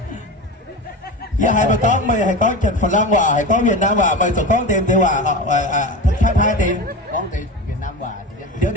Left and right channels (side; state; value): both; normal; correlation 0.26